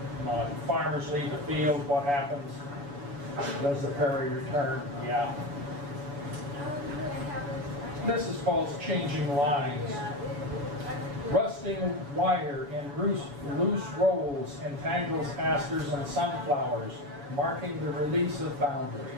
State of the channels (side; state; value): left; late; 7.0 ms